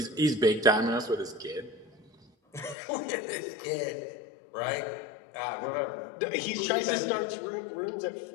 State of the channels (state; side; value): drops out; right; at 2.8 s